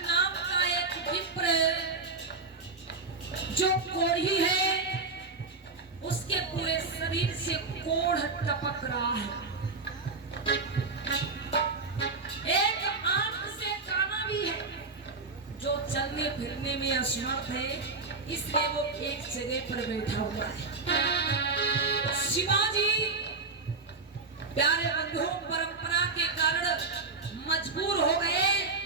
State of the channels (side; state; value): left; quieter; 3.9 dB